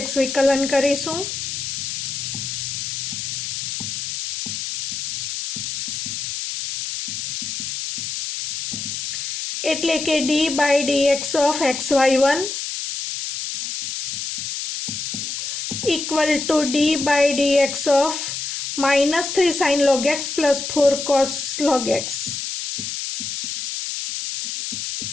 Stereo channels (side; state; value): left; noise; hiss, 4 dB below the sound